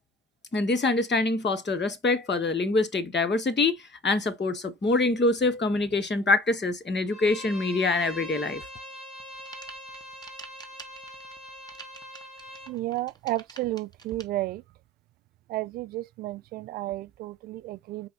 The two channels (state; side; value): normal; both; correlation 0.46